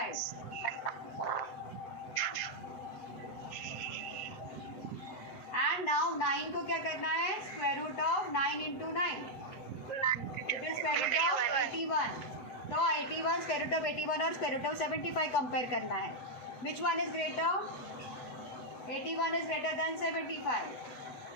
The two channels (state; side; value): late; right; 8.0 ms